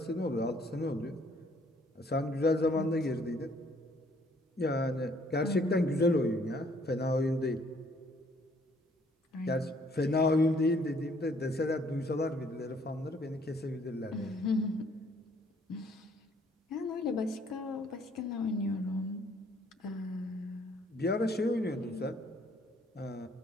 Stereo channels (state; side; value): normal; both; correlation 0.63